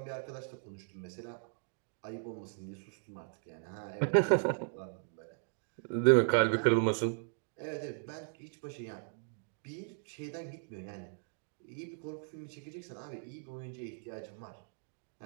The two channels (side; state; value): left; silent; digital silence